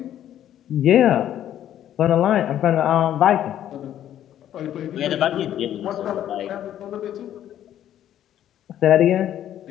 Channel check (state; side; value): quieter; right; 11.2 dB